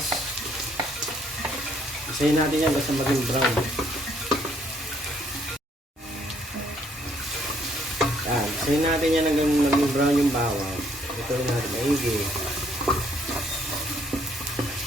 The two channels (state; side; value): normal; both; correlation 0.67